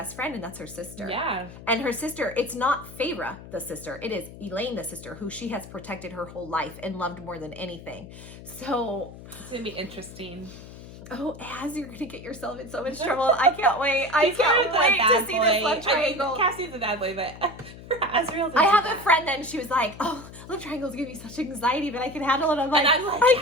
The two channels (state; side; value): noise; left; hum, 15 dB below the sound